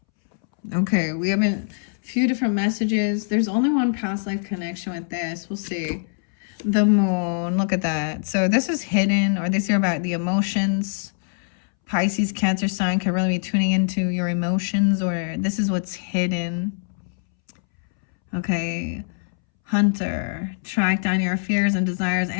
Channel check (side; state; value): right; silent; 63 dB below the other